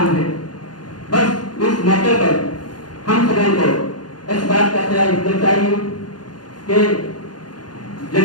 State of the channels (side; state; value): right; late; 0.70 ms